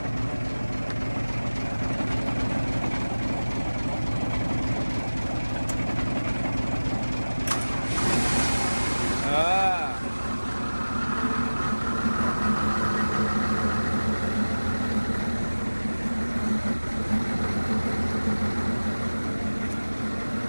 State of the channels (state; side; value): inverted; both; correlation -1.00